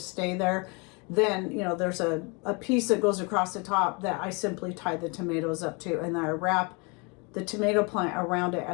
stay there. Then there's a piece that goes across the top that I simply tie the tomatoes up to, and I wrap the tomato plant around it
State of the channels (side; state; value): right; quieter; 30.8 dB